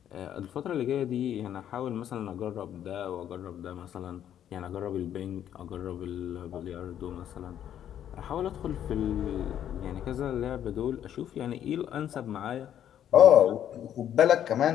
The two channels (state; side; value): quieter; right; 10.3 dB